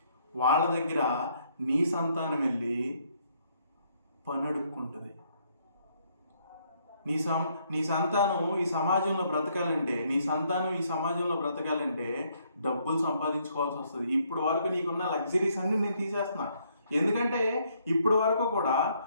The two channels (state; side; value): inverted; both; correlation -0.70